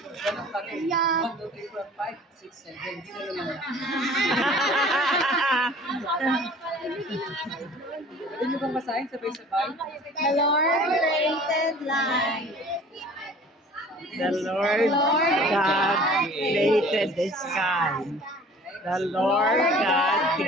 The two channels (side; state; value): both; normal; correlation 0.47